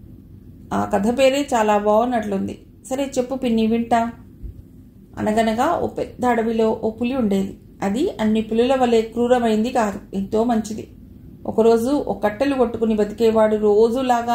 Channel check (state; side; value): identical; both; correlation 1.00